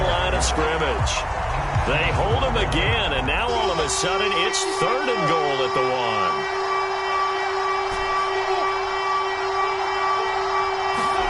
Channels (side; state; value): both; identical; correlation 1.00